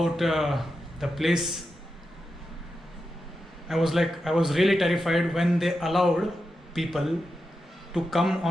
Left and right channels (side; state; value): both; normal; correlation 0.89